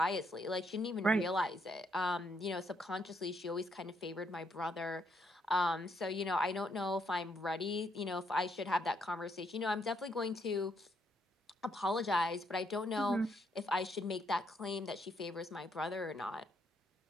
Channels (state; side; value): normal; both; correlation 0.74